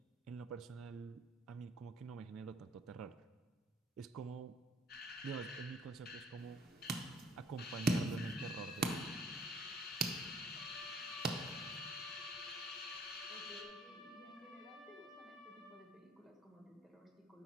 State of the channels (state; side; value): normal; both; correlation 0.59